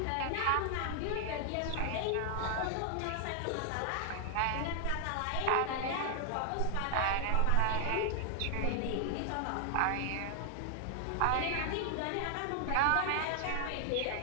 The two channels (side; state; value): both; different; correlation 0.00